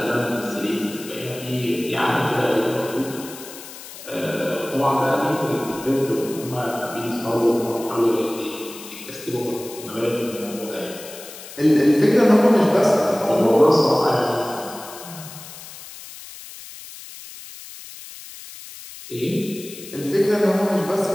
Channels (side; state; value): left; noise; hiss, 15 dB below the sound